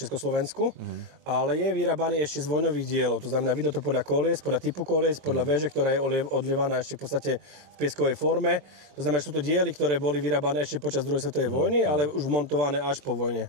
ale je vyrábaný ešte z vojnových dielov. To znamená, vidno to podľa kolies, podľa typu kolies, podľa veže, ktorá je odlievaná ešte v podstate v pieskovej forme. To znamená, že sú to diely, ktoré boli vyrábané ešte počas druhej svetovej vojny, ale už montované až po vojne.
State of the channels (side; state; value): left; late; 22 ms